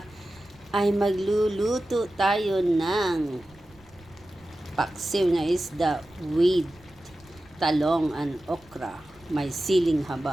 ay magluluto tayo ng paksiw na isda with talong and okra. May siling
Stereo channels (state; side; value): noise; right; rumble, 27 dB below the sound